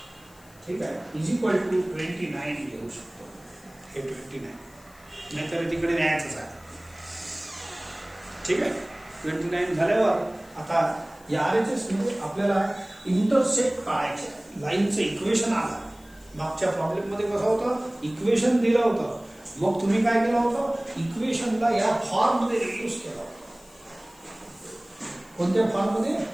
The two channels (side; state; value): left; noise; hiss, 26 dB below the sound